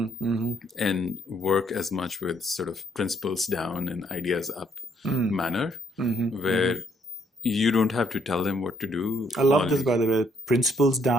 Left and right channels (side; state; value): both; normal; correlation 0.70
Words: work as much with sort of principles down and ideas up manner, where you don't have to tell them what to do. I love this, by the way. Principles